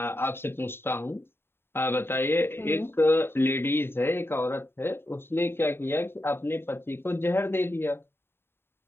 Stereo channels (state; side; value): late; right; 0.11 ms